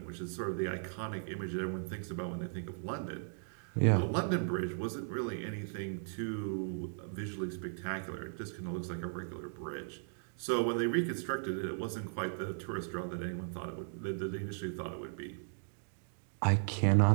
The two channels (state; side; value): silent; left; digital silence